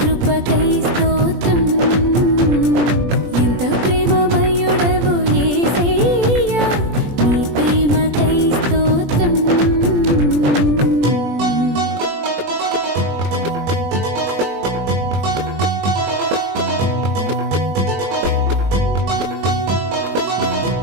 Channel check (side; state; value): left; late; 20 ms